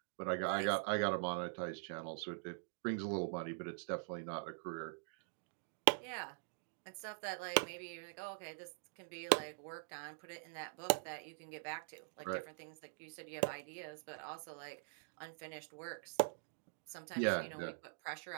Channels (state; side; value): silent; left; digital silence